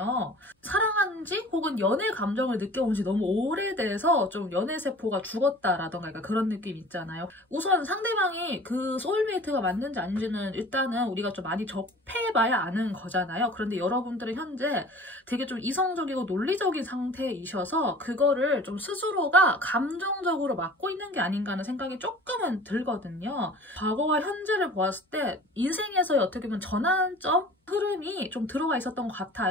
사랑한 지 혹은 연애 감정을 느껴본 지 너무 오래돼서 좀 연애세포가 죽었다라던가 그런 느낌 있잖아요. 우선 상대방이 그 소울메이트가 맞는지 아닌지는 일단은 우리가 좀 많이 접해봐야 아는 거잖아요. 그런데 여러분들은 현재 되게 좀 이성적이고 논리적인 상태이셔서 그거를 좀 스스로가 감정적으로 맡고 있는 게 아닌가 하는 생각이 조금은 들거든요. 과거와 현재를 보았을 때 인생에서의 어떻게 보면 전환점 흐름이 좀 들어가 있었던 것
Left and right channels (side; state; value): both; normal; correlation 0.44